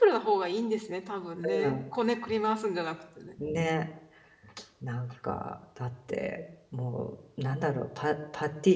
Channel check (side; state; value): both; identical; correlation 1.00